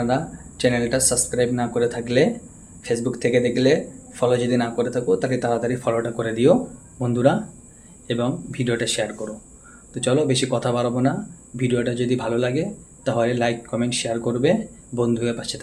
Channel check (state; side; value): identical; both; correlation 1.00